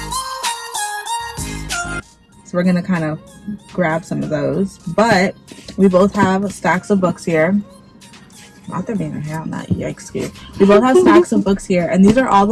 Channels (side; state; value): both; identical; correlation 1.00